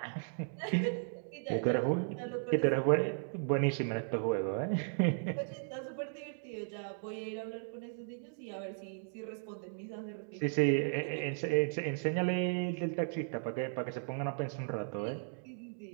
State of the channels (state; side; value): silent; left; digital silence